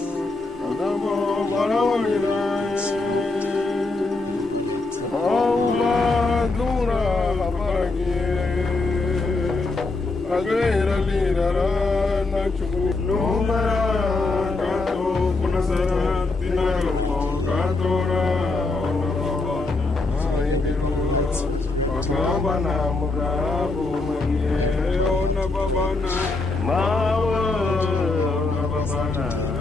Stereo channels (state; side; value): quieter; right; 3.4 dB